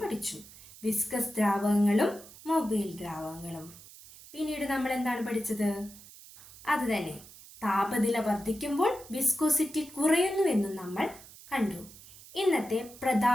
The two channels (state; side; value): noise; right; hiss, 19 dB below the sound